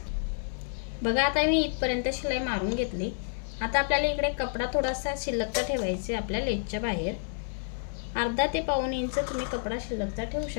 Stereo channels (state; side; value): silent; right; 58 dB below the other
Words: बघा, आता मी इथपर्यंत शिलाई मारून घेतली। आता आपल्याला इकडे कपडा थोडासा शिल्लकचा ठेवायचा आपल्या लेसच्या बाहेर, अर्धा ते पाऊण इंच तुम्ही कपडा शिल्लकचा ठेवू